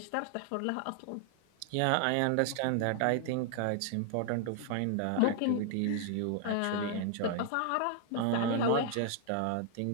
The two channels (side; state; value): both; different; correlation 0.00